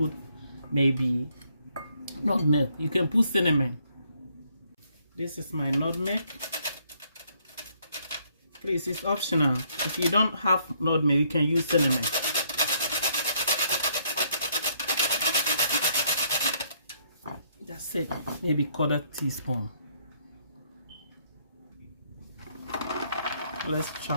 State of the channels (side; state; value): both; inverted; correlation -0.69